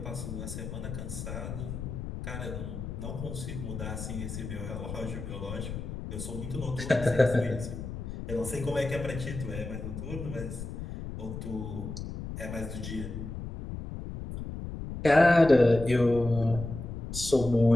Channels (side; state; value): left; noise; rumble, 7 dB below the sound